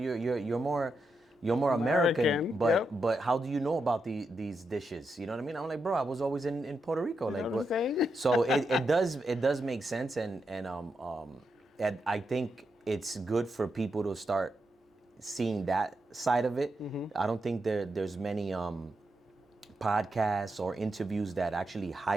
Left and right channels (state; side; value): normal; both; correlation 0.84